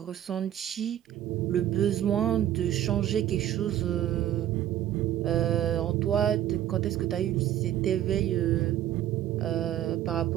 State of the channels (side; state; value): left; quieter; 12.0 dB